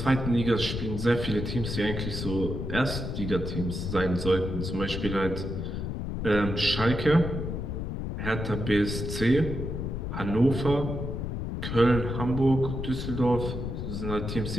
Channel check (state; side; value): noise; left; rumble, 4 dB below the sound